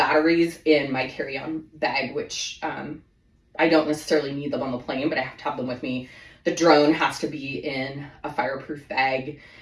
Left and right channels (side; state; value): both; identical; correlation 1.00